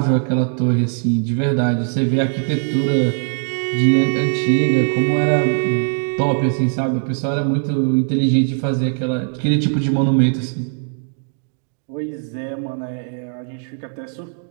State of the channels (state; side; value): silent; left; 66 dB below the other